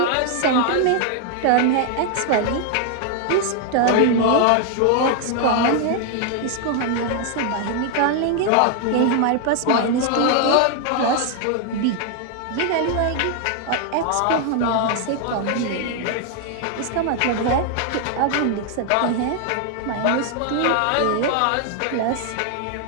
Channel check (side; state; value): both; different; correlation 0.00